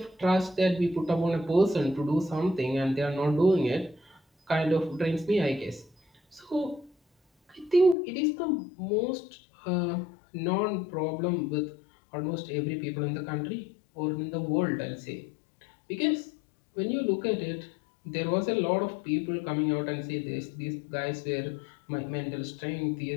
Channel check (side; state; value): right; drops out; at 8.0 s